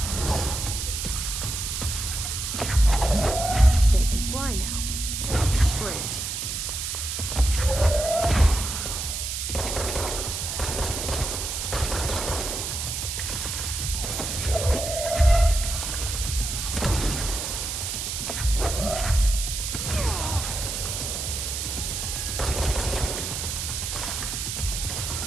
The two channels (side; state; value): right; noise; hiss, 3 dB below the sound